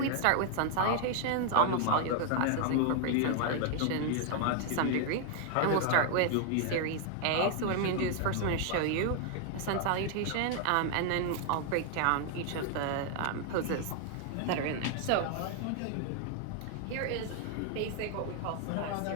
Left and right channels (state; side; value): different; both; correlation 0.00